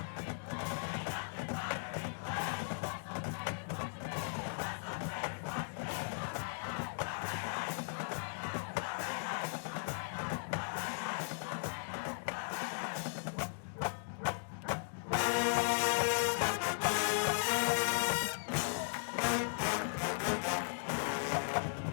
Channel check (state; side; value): silent; right; digital silence